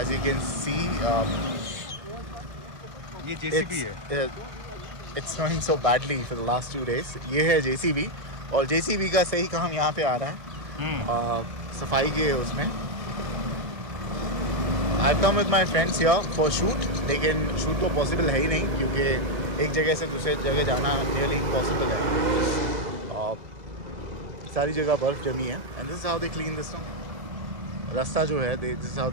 you can see, ये JCB है। it's snowing so badly for the last 2 days. ये है JCB और JCB का सही काम यहाँ पे आ रहा है सफाई के उसमें. I've come with my friends here for shoot, लेकिन shoot तो possible है ही नहीं क्योंकि एक जगह से दूसरे जगह जाना nearly impossible है. सारी जगह बर्फ़ जमी है and this is how they clean this no. रास्ता जो है this is how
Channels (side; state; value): left; late; 1.8 ms